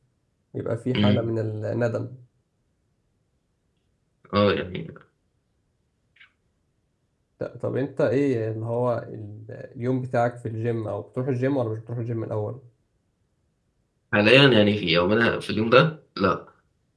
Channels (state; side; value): identical; both; correlation 1.00